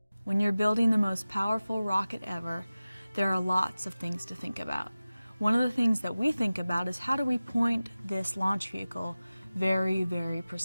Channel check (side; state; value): both; inverted; correlation -0.96